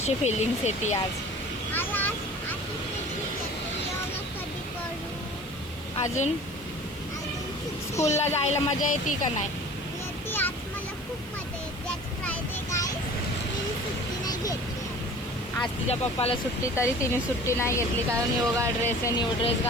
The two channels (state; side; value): noise; left; hiss, 22 dB below the sound